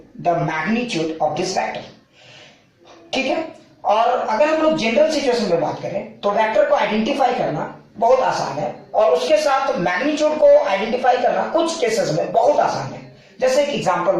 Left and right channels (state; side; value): identical; both; correlation 1.00